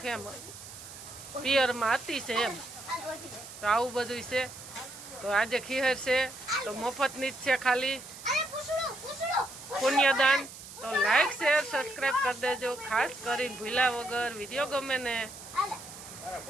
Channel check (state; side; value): noise; right; hiss, 14 dB below the sound